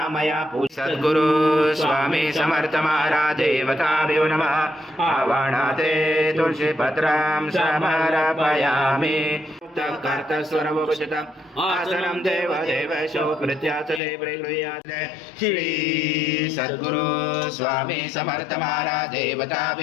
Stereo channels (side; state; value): right; drops out; at 14.0 s